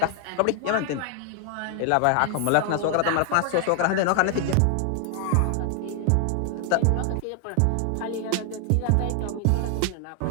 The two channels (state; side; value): different; both; correlation 0.00